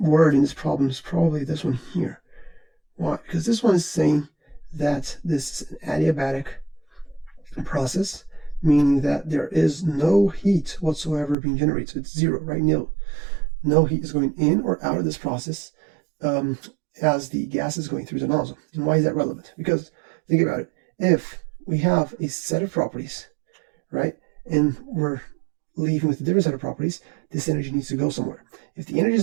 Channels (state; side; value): drops out; left; at 11.4 s